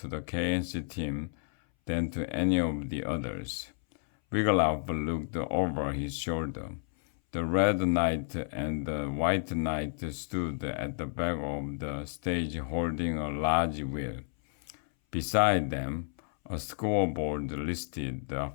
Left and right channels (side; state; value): right; silent; 57 dB below the other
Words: the KNC team than to any of the others. Wiglaf looked over his shoulder. The Red Knight and the White Knight stood at the back of the stage holding a large wheel. Beside them, a scoreboard listed the